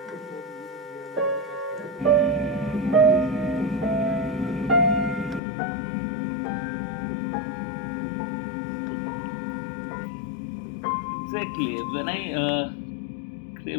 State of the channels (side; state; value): right; drops out; at 5.4 s